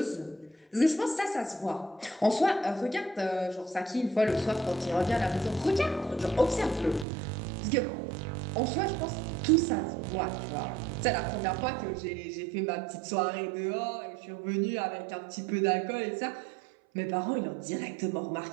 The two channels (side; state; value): left; drops out; at 7.1 s